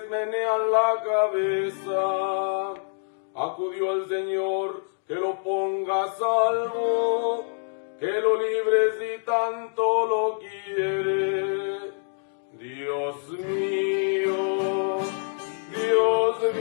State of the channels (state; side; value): silent; right; digital silence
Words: menean la cabeza. Acudió el Señor, que lo ponga a salvo, que lo libre si tanto lo quiere. Dios mío,